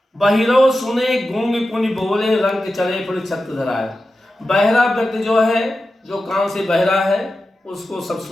बहिरो सुने गूंग पुनि बोले, रंग चले फिर छत्र धराए। बहरा व्यक्ति जो है, जो कान से बहरा है उसको सब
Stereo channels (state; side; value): normal; both; correlation 0.92